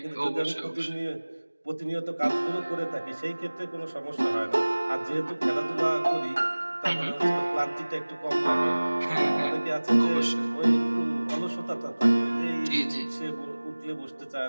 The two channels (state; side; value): inverted; both; correlation -1.00